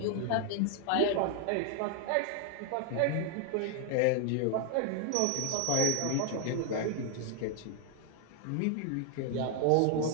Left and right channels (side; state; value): both; different; correlation 0.00